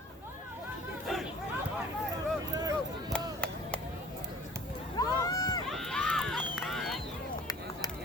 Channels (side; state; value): both; normal; correlation 0.50